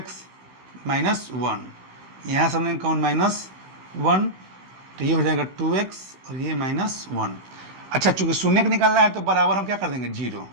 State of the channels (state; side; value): late; left; 16 ms